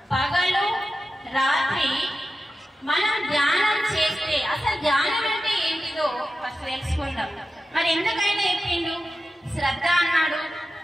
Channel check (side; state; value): both; normal; correlation 0.92